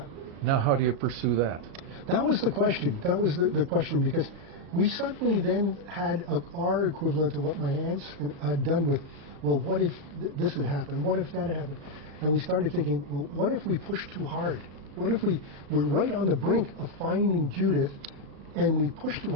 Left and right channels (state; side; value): late; left; 36 ms